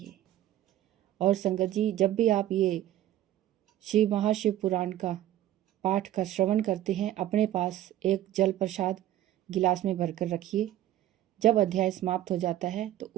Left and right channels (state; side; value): quieter; left; 13.1 dB